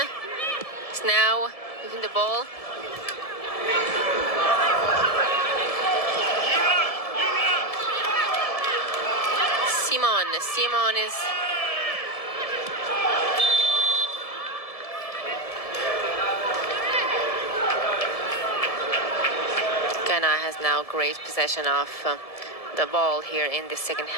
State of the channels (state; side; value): late; right; 1.7 ms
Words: is now moving the ball. Simon is Ghana has now great possession of the ball here in the second